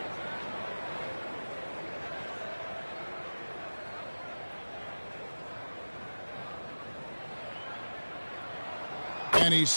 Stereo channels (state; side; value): inverted; both; correlation -1.00